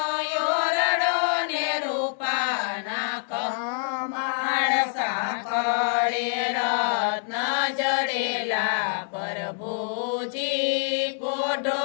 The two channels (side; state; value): right; silent; 61 dB below the other